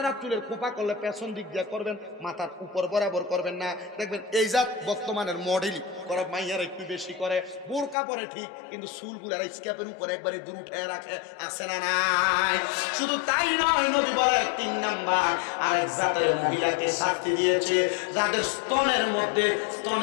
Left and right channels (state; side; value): drops out; right; at 8.0 s